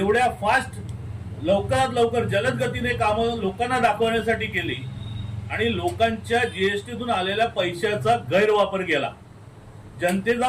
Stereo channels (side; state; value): both; identical; correlation 1.00